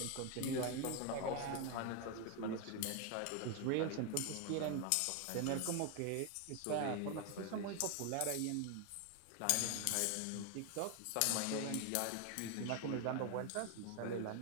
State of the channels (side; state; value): both; different; correlation 0.01